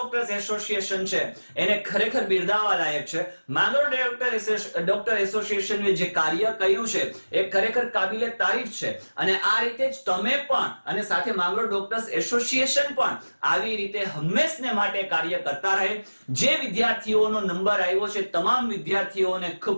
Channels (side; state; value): both; inverted; correlation -1.00